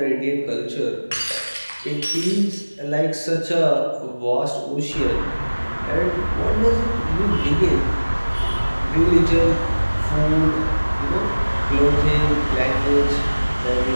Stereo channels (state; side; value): inverted; both; correlation -1.00